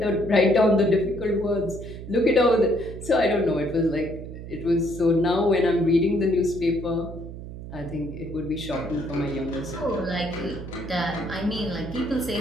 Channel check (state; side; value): noise; right; hum, 11 dB below the sound